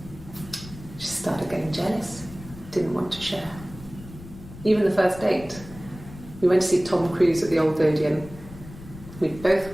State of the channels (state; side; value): noise; left; rumble, 16 dB below the sound